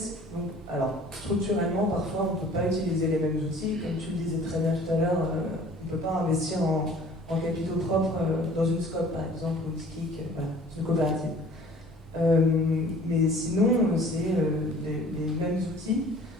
alors structurellement, parfois on ne peut pas utiliser les mêmes outils. Comme tu le disais très bien tout à l'heure, on ne peut pas investir en capitaux propres dans une SCOP par exemple, ou une SKIC, voilà, c'est une coopérative. Mais sinon, c'est les mêmes outils,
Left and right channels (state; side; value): normal; both; correlation 0.50